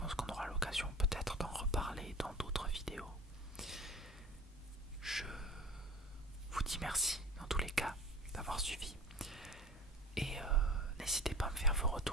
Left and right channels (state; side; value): normal; both; correlation 0.38